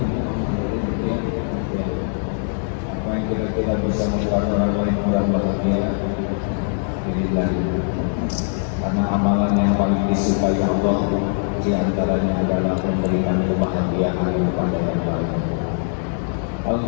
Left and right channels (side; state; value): right; silent; 57 dB below the other